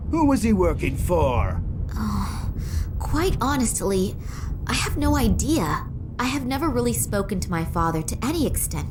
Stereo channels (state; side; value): identical; both; correlation 1.00